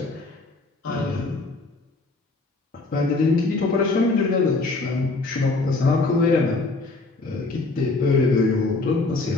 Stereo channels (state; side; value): quieter; right; 3.4 dB